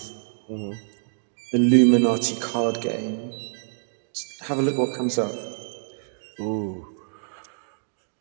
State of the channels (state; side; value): silent; left; digital silence